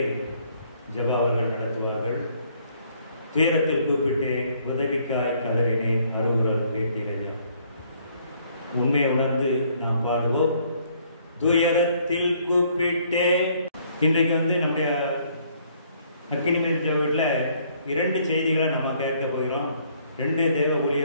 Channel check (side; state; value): both; inverted; correlation -0.65